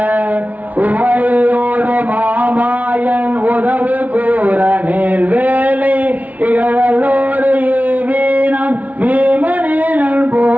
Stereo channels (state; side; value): late; left; 0.073 ms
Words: உமையோடு மாமாயன் உதவு கூற நேர் வேலை இகழோடு வீணம் வீமனேனல்